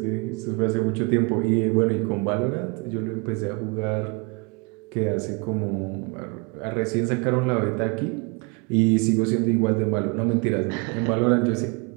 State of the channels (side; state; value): left; quieter; 30.5 dB